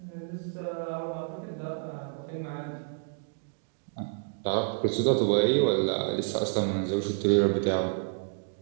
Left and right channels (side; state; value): left; silent; digital silence